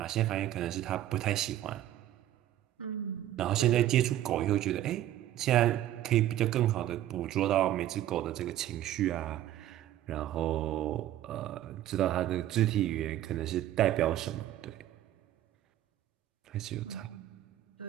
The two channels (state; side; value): quieter; left; 13.0 dB